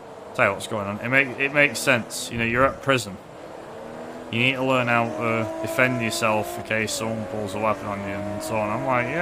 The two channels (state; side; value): identical; both; correlation 1.00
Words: Tell you what's going on. It makes sense. You know, you're at prison. You need to learn how to defend yourself in case someone pulls a weapon on you and so on. I'm like,